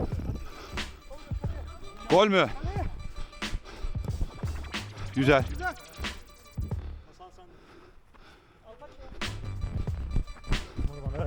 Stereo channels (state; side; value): identical; both; correlation 1.00